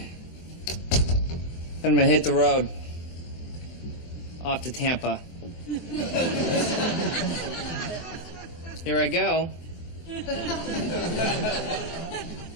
gonna hit the road. Off to Tampa. Here I go.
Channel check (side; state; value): right; late; 24 ms